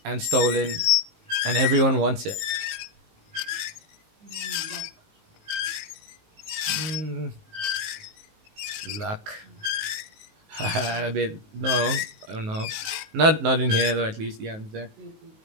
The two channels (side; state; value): left; late; 18 ms